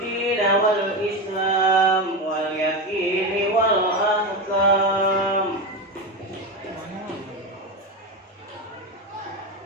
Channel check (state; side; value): normal; both; correlation 0.17